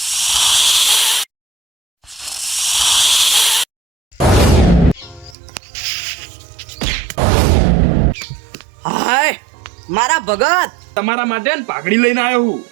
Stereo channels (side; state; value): left; drops out; at 5.4 s